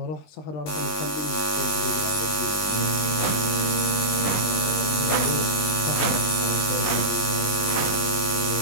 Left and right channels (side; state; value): right; late; 19 ms